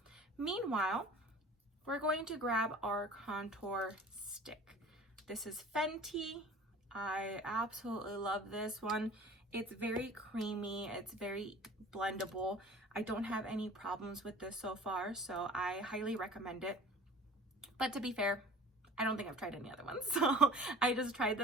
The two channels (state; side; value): normal; both; correlation 0.44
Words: Meanwhile, we're going to grab our contour stick. This is Fenty. I absolutely love this one. It's very creamy. It's very blendable. I don't have any problems with this so far, so I highly recommend it. But to be fair, I don't think I've tried any other ones. So I just tried